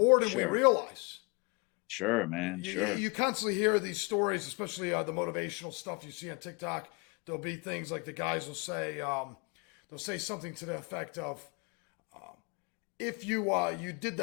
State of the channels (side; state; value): right; quieter; 30.5 dB